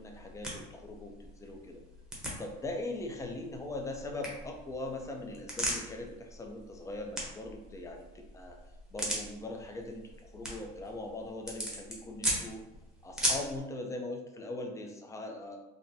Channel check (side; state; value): both; normal; correlation 0.28